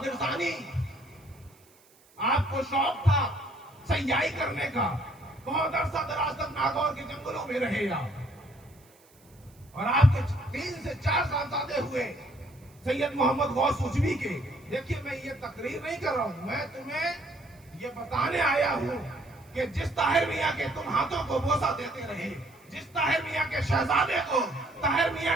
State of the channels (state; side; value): noise; right; hiss, 29 dB below the sound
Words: ثانی، آپ کو شوق تھا سیاحی کرنے کا، بہت عرصہ دراز تک ناگور کے جنگلوں میں رہے آپ. اور آپ کے 3 سے 4 صاحبزادے ہوئے سید محمد غوث اوچوی کے. دیکھیے میں یہ تقریر نہیں کر رہا ہوں، میں تمہیں یہ بتانے آیا ہوں کہ جس طاہر میاں کے تم ہاتھوں کو بوسہ دیتے رہے، جس طاہر میاں کے شہزادے کو طاہر